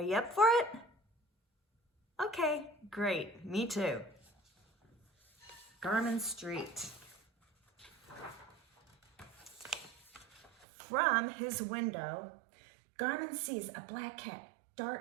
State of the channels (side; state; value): left; drops out; at 10.7 s